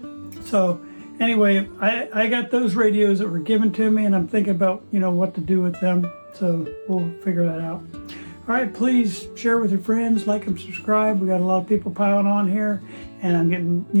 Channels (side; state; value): both; inverted; correlation -1.00